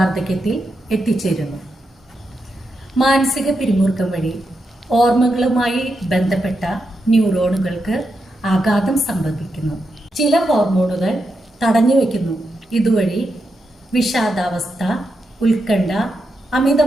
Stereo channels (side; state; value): both; normal; correlation 0.85